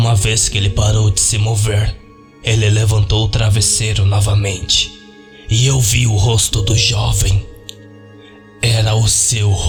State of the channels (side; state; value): both; identical; correlation 1.00